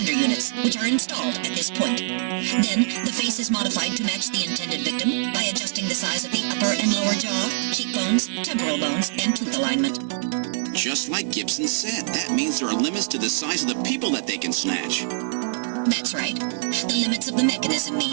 units, which are installed at this point. Then, the face is modified to match the intended victim by adjusting the size of the upper and lower jaw, cheekbones, temporal bones, and tooth alignment. Just like Gibson said, that means there are limits to the size of the people that they can snatch. That's right. The limits of the mechanism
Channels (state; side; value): silent; left; digital silence